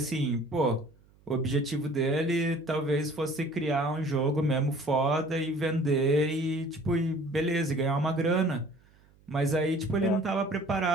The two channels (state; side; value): noise; right; hum, 30 dB below the sound